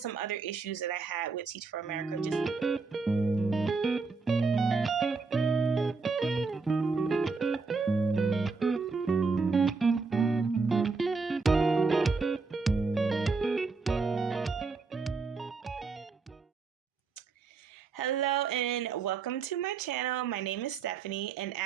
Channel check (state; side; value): quieter; left; 4.4 dB